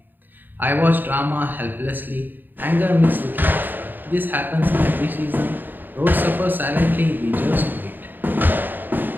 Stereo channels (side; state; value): left; late; 0.091 ms